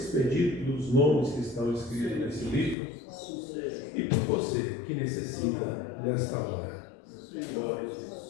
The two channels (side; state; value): right; drops out; at 2.8 s